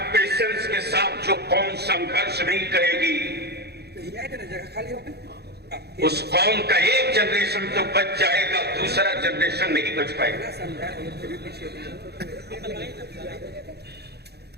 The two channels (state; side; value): late; left; 0.48 ms